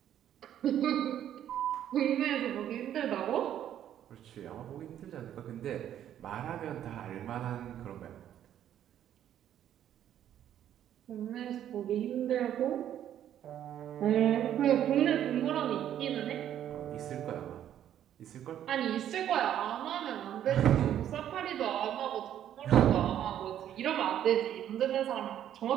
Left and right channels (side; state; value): left; quieter; 10.7 dB